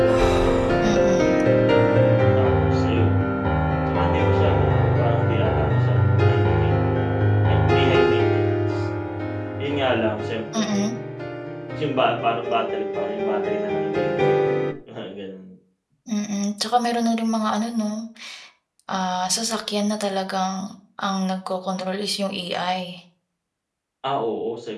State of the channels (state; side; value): identical; both; correlation 1.00